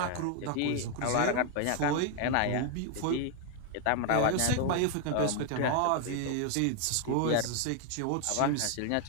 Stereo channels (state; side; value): different; both; correlation 0.00